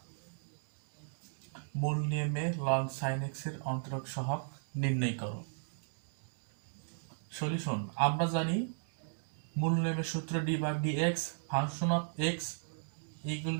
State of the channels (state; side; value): silent; left; digital silence